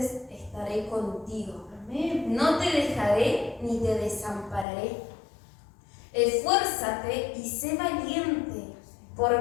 estaré contigo. Amén. No te dejaré ni te desampararé. Esfuérzate y sé valiente,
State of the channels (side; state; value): right; drops out; at 4.7 s